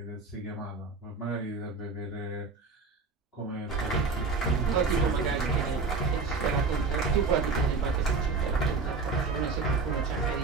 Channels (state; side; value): quieter; left; 4.3 dB